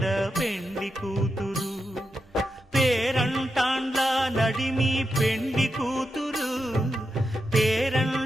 పెండ్లి కూతురు పేరంటాండ్ల నడిమి పెండ్లి కూతురు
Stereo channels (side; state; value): both; normal; correlation 0.87